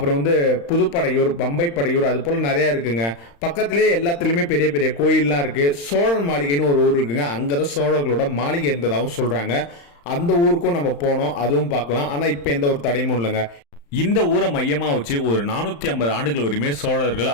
புதுப்படையூர், பம்பை படையூர், அது போல நிறைய இருக்குங்க. பக்கத்திலேயே எல்லாத்துலயுமே பெரிய பெரிய கோயில்லாம் இருக்கு. சோழன் மாளிகைன்னு ஒரு ஊர் இருக்குங்க. அங்கதான் சோழர்களோட மாளிகை இருந்ததாகவும் சொல்றாங்க. அந்த ஊருக்கும் நம்ம போனோம், அதுவும் பார்க்கலாம். ஆனா இப்ப எந்த ஒரு தடையும் இல்லைங்க. இந்த ஊரை மையமாக வச்சு ஒரு 450 ஆண்டுகள் வரையுமே சோழர்கள்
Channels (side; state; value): right; late; 35 ms